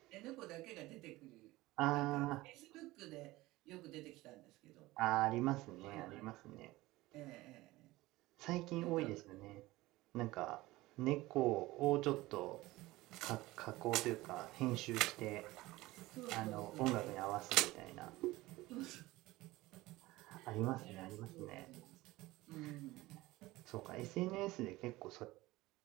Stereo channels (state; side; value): quieter; left; 19.0 dB